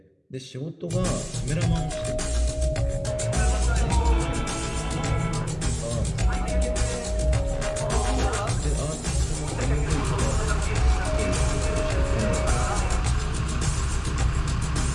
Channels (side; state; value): both; identical; correlation 1.00